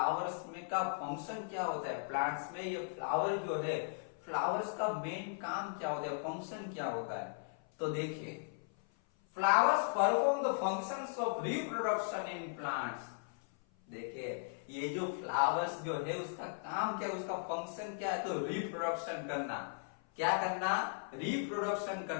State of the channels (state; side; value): silent; right; 53 dB below the other